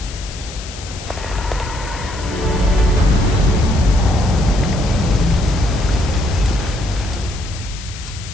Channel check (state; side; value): noise; left; hiss, 14 dB below the sound